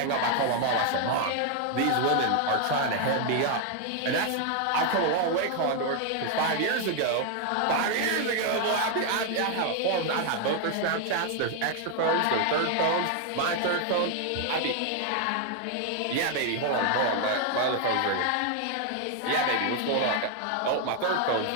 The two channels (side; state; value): both; different; correlation 0.00